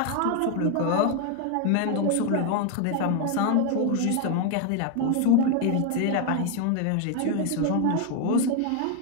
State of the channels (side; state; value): both; different; correlation 0.00